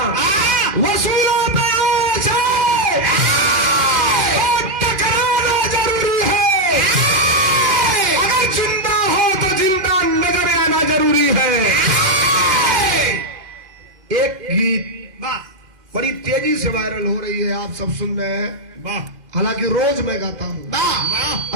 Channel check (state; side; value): late; left; 2.4 ms